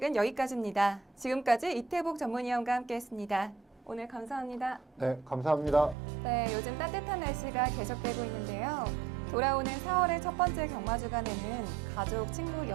여기까지입니다. 지금까지 이태복 전문위원과 함께했습니다. 오늘 감사합니다. 네, 감사합니다. 네, 요즘 따뜻한 날씨가 계속되고 있는데요. 돌아오는 4월의 첫 번째 경마주간에는 가족, 친구,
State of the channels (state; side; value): drops out; left; at 6.0 s